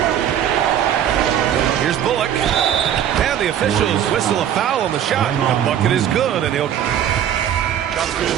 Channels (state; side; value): quieter; left; 10.0 dB